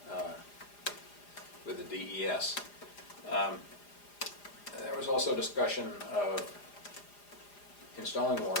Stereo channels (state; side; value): late; right; 4.9 ms